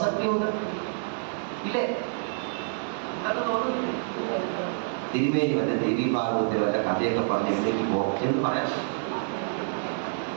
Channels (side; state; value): left; silent; digital silence